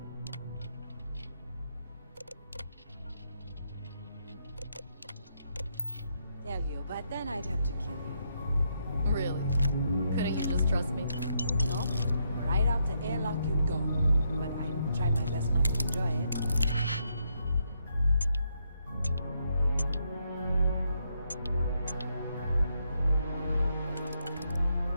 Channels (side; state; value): both; inverted; correlation -0.77